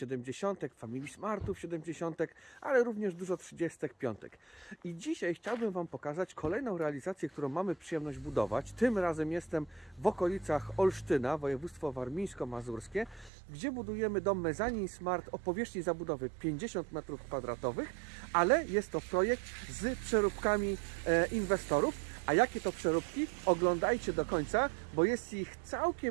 Family Smartów 70, ale również dużo 35. I dzisiaj chciałbym Wam pokazać kolejną realizację, którą mamy przyjemność budować. Tym razem jestem w okolicach Olsztyna, województwo warmińsko-mazurskie, gdzie budujemy dom mezanin Smart o powierzchni zabudowy 50 m2, ale jest to projekt z przeróbkami inwestorów. A jakie to przeróbki? Oglądajcie do końca, bo jest ich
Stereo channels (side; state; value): left; drops out; at 13.3 s